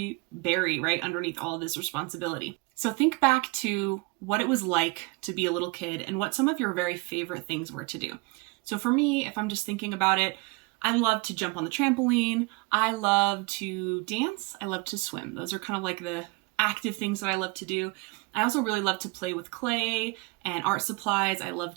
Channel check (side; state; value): left; quieter; 26.5 dB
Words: bury right underneath all of this responsibility. So think back to what it was like to be a little kid and what some of your very favorite things were to do. So for me, if I'm just thinking about it, I love to jump on the trampoline. I love to dance. I love to swim. Those are kind of like the active things that I love to do. I also really love to play with clay and art supplies. I